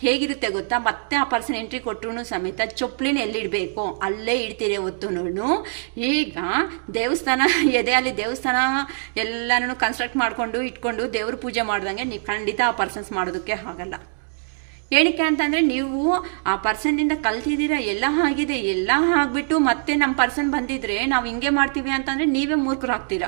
ಹೇಗಿರುತ್ತೆ ಗೊತ್ತಾ, ಮತ್ತೆ ಆ ಪರ್ಸನ್ ಎಂಟ್ರಿ ಕೊಟ್ಟರು ಸಮೇತ ಚೊಪ್ಲಿನ ಎಲ್ಲಿಡಬೇಕು ಅಲ್ಲೇ ಇಡ್ತೀರಿ ಹೊತ್ತುನು. ಈಗ ದೇವಸ್ಥಾನ ಎದೆಯಲ್ಲಿ ದೇವಸ್ಥಾನ ಎಲ್ಲನೂ ಕನ್ಸ್ಟ್ರಕ್ಟ್ ಮಾಡಿಕೊಂಡು ಇಟ್ಕೊಂಡು ದೇವ್ರ ಪೂಜೆ ಮಾಡ್ದಂಗೆ ನೀವು ಖಂಡಿತ ಆ ಪರ್ಸನ್ಸ್ ಮಾಡೋದಕ್ಕೆ ಆಗಲ್ಲ. ಏನಕ್ಕೆ ಅಂತಂದರೆ ನೀವು ಆ ಪರ್ಸನ್ನಿಂದ ಕಲ್ತಿದ್ದೀರಾ, ಎಲ್ಲ ಆಗಿದೆ, ಎಲ್ಲ ಆಗಿಬಿಟ್ಟು ಮತ್ತೆ ನಮ್ಮ ಪರ್ಸನ್ ಬಂದಿದ್ರೆ ನಾವು ಹಿಂಗೆ ಮಾಡ್ತೀವಿ ಅಂತಂದರೆ ನೀವೇ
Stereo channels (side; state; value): left; silent; digital silence